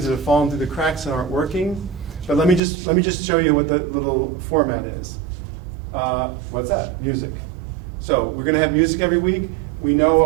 that have fallen through the cracks and aren't working. But let me just show you what the little format is. What's that? Music. So we're going to have music every week. We know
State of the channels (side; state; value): left; drops out; at 2.6 s